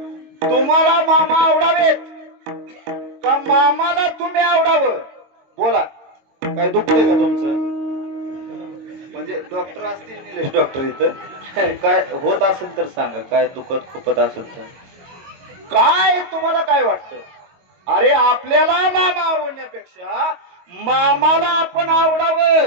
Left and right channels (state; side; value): late; left; 22 ms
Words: तुम्हाला मामा आवडावेत का मामाला तुम्ही आवडावं? बोला. काय दुखतंय का तुमचं? म्हणजे डॉक्टर असतील निलेश डॉक्टर इथं, काय होत असेल तर सांगा. काय दुखत खुपत असेल तर काय तुम्हाला काय वाटतं? अरे आपल्याला मामा आवडण्यापेक्षा मामाला आपण